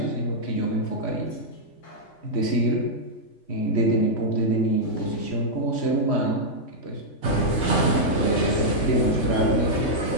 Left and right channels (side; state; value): right; late; 3.3 ms